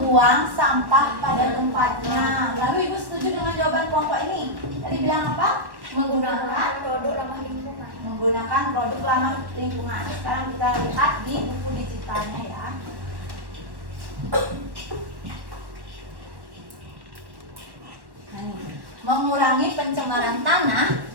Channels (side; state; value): left; late; 1.1 ms